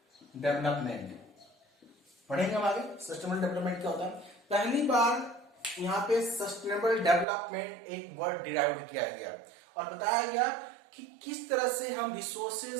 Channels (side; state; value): left; drops out; at 7.2 s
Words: डेवलपमेंट। पढ़ेंगे हम आगे सस्टेनेबल डेवलपमेंट क्या होता है। पहली बार यहाँ पे सस्टेनेबल डेवलपमेंट एक वर्ड डिराइव किया गया, और बताया गया कि किस तरह से हम